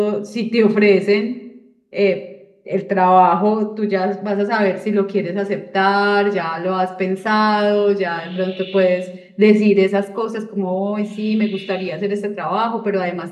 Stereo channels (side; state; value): both; identical; correlation 1.00